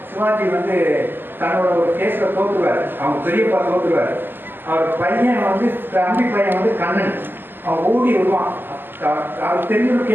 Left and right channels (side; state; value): left; late; 0.094 ms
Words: சிவாஜி வந்து தன்னோட ஒரு கேஸில் தோற்றுவார். அவங்க பெரியப்பா தோற்றுவார். அவர் பையன் வந்து தம்பி பையன் வந்து கண்ணன் அவன் ஓடி விடுவான். அவர் தெரிஞ்ச ஒரு